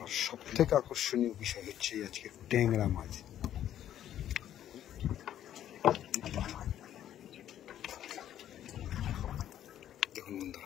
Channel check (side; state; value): right; quieter; 11.2 dB